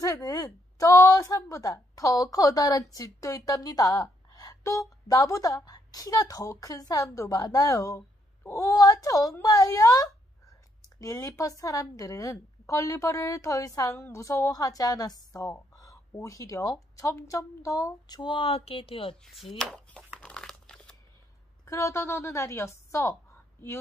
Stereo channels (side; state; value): both; normal; correlation 0.73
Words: 저 산보다 더 커다란 집도 있답니다. 또 나보다 키가 더 큰 사람도 많아요. 우와, 정말요? 릴리펫 사람들은 걸리버를 더 이상 무서워하지 않았어. 오히려 점점 더 좋아하게 되었지. 그러던 어느 날이었어.